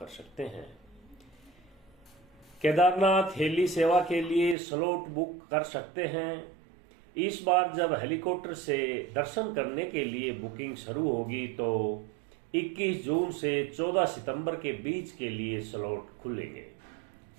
सकते हैं। केदारनाथ हेली सेवा के लिए स्लॉट बुक कर सकते हैं। इस बार जब हेलीकॉप्टर से दर्शन करने के लिए बुकिंग शुरू होगी तो 21 जून से 14 सितंबर के बीच के लिए स्लॉट खुलेंगे।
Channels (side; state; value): left; drops out; at 4.5 s